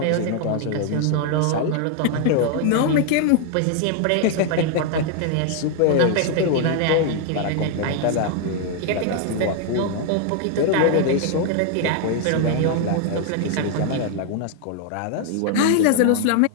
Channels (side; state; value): both; different; correlation 0.00